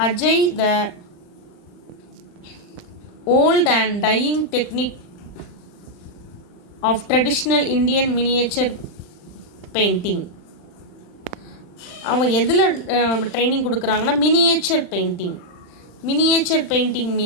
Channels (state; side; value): late; right; 39 ms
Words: Ajay the old and dying technique of traditional Indian miniature painting. அவன் எதில் ட்ரைனிங் கொடுக்குறாங்கன்னா miniature painting. Miniature painting